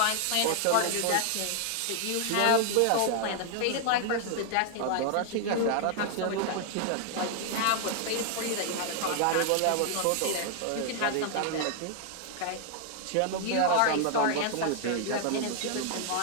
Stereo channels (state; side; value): different; both; correlation 0.00